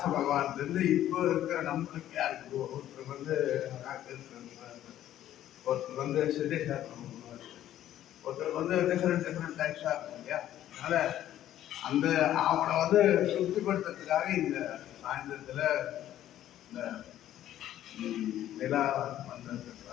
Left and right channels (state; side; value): quieter; right; 12.3 dB